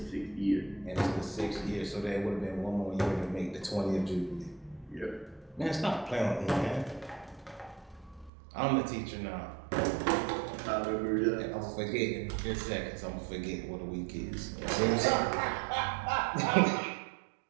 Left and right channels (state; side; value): drops out; left; at 8.3 s